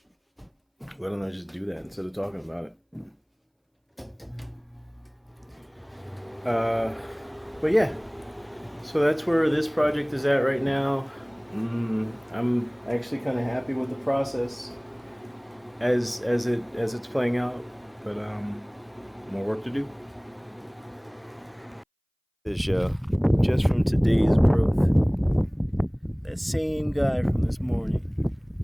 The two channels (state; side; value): identical; both; correlation 1.00